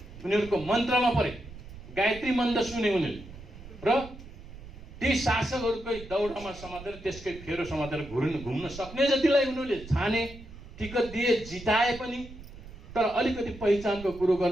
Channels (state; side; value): noise; right; rumble, 15 dB below the sound